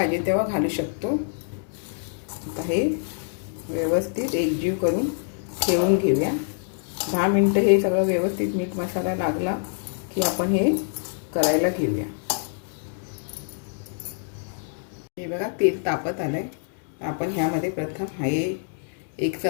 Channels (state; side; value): silent; right; digital silence